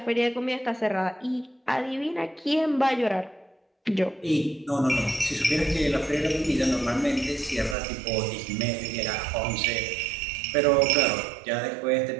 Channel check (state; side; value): drops out; left; at 7.8 s